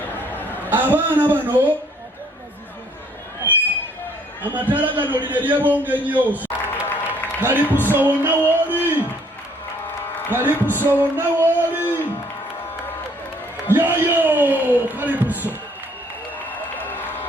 Abaana bano amataala gano lino eryebonga ennyo. Kalipuso wonna wooli, Kalipuso wonna wooli, yoyo Kalipuso.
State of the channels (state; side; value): normal; both; correlation 0.62